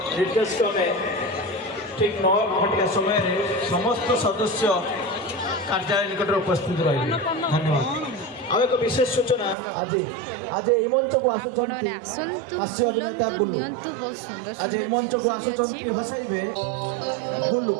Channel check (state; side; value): drops out; left; at 9.6 s